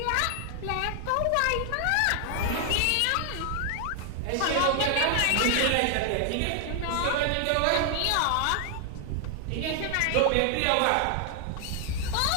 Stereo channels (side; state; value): both; different; correlation 0.00